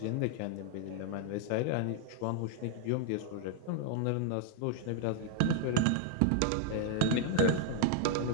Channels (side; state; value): both; different; correlation 0.00